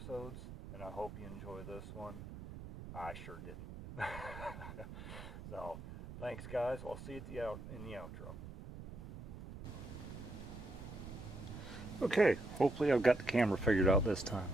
and I hope you enjoy this one. I sure didn't. So thanks, guys. I'll see you in the outro. Okay, hopefully I've got the camera figured out this time.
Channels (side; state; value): right; noise; rumble, 11 dB below the sound